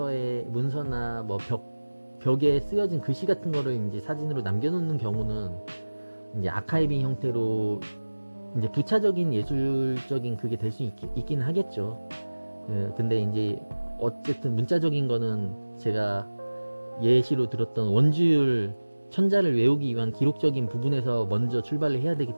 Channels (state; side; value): inverted; both; correlation -1.00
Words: 뭐 벽에 쓰여진 글씨 같은 거를 이제 사진으로 남겨놓는 경우는 이제 아카이빙 형태로 이제 부차적인 예술적인 그게 될 수 있긴 하겠죠. 근데 이제 어쨌든 문자적인 거는 제가 예시로 들었던 원주율 천자를 외우기 위한 기록적인 부분에서 먼저 출발을 해야 되기